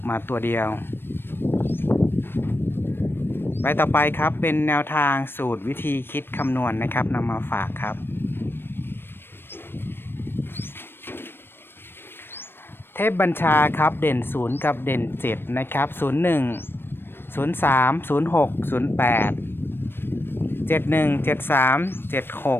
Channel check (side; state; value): right; late; 0.10 ms